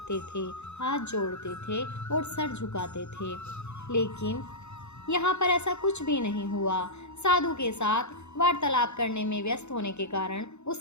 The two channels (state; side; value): late; right; 0.81 ms